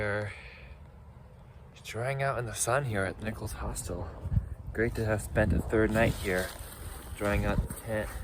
drying out in the sun here at the Nichols Hostel. Great to have spent a third night here, drying out the tent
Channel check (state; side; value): identical; both; correlation 1.00